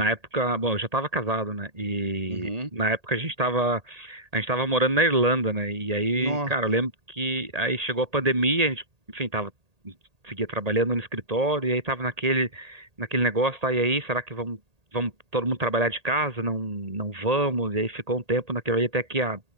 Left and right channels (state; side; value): late; left; 1.8 ms